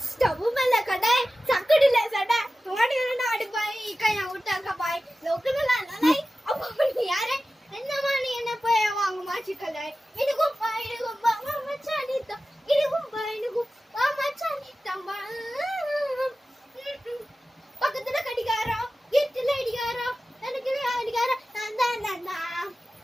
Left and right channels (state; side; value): normal; both; correlation 0.95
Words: ஸ்டவ் மேல கடை சக்கடில சடை தோடி ஆடி பாய் கையா விட்டாங்க பாய் லோக்கலா நாய் அப்போ யாரே என்னமா நீ என்ன போய் வாங்க மாச்சிக்கலை இதுக்கும் பா இதுக்கும் பா மச்சானி தான் இதுக்கும் பா இதுக்கும் பா மச்சானி தம்பா பக்கத்துல கடிகாரம் வீட்டுல அடிகாரம் எனக்கு அடிகாரம் நான்